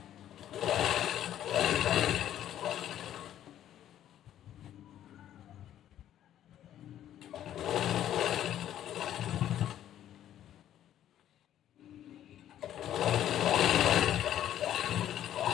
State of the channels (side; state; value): right; quieter; 11.4 dB